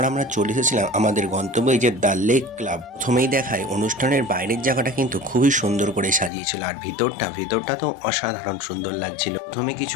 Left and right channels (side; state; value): right; drops out; at 6.3 s